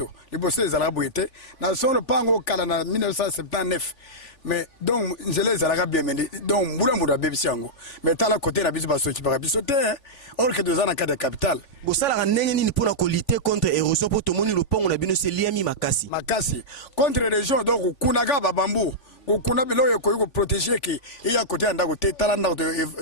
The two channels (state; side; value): late; right; 3.4 ms